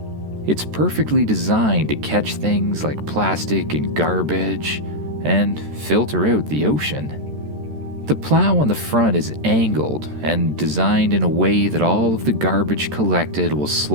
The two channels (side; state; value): left; late; 13 ms